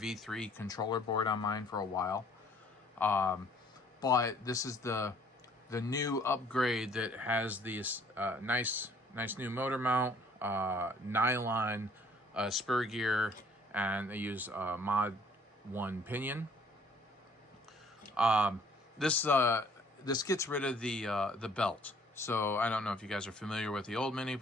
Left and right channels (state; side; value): normal; both; correlation 0.59